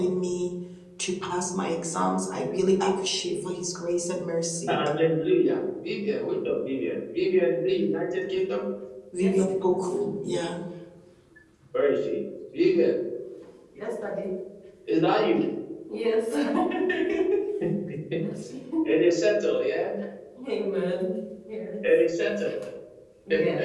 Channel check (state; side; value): identical; both; correlation 1.00